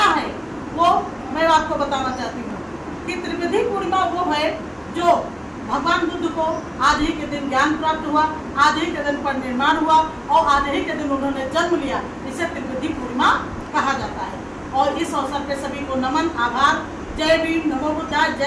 है वो मैं आपको बताना चाहती हूँ कि त्रिवेदी पूर्णिमा वो है जो भगवान बुद्ध को आज ही के दिन ज्ञान प्राप्त हुआ, आज ही के दिन पर निर्माण हुआ और आज ही के दिन उन्होंने जन्म लिया। इसे त्रिवेदी पूर्णिमा कहा जाता है। और इस अवसर पे सभी को नमन, आभार। जय भीम, नमो बुद्धाय,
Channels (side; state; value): both; identical; correlation 1.00